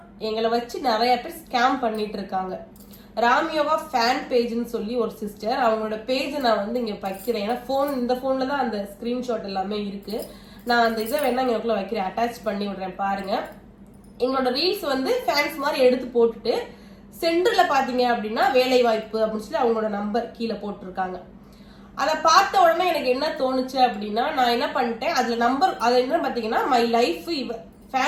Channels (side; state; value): both; identical; correlation 1.00